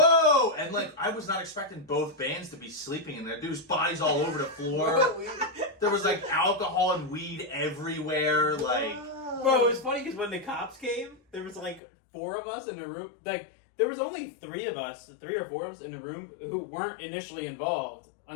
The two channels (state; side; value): drops out; right; at 11.8 s